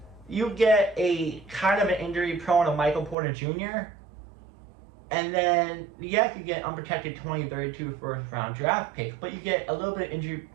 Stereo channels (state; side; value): drops out; left; at 3.2 s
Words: you get a kind of an injury-prone of Michael Porter Jr., and then, yes, you get unprotected 2032 first-round draft pick, but you get a little bit